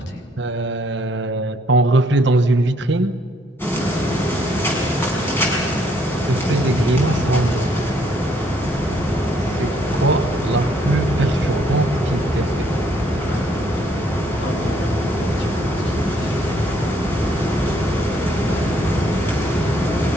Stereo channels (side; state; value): both; normal; correlation 0.67